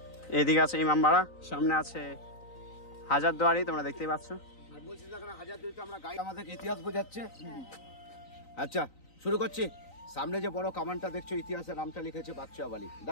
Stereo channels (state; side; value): late; right; 3.9 ms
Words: এদিকে আছে ইমামবাড়া, সামনে আছে হাজারদুয়ারি, তোমরা দেখতেই পাচ্ছ। আমাদের ইতিহাস বোঝাচ্ছে। আচ্ছা, শুরু করছি। সামনে যে বড় কামানটা দেখছো, ইতিহাসের নামটা লিখেছে বাচ্চা বালি।